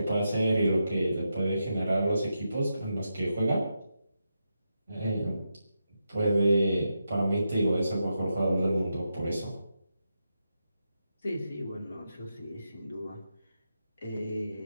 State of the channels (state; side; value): inverted; both; correlation -0.86